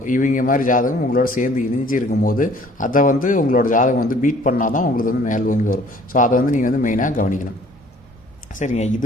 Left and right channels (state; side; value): normal; both; correlation 0.55